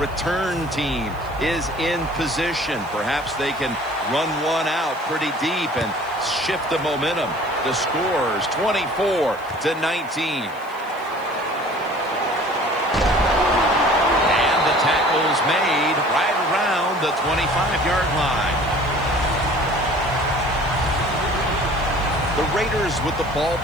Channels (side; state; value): left; noise; hiss, 26 dB below the sound